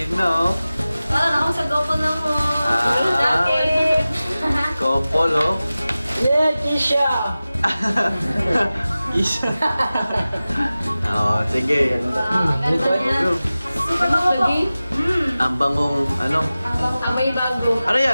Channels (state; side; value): inverted; both; correlation -0.96